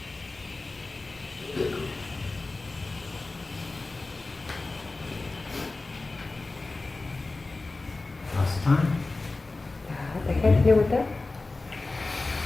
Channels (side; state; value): right; quieter; 3.4 dB